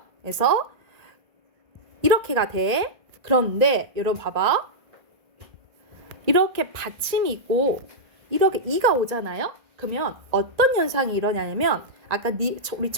그래서 이렇게가 돼. 그런데 여러분 봐봐. 이렇게 받침이 있고 이렇게 이가 오잖아요. 그러면 어떤 현상이 일어나냐면 아까 우리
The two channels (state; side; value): late; left; 1.9 ms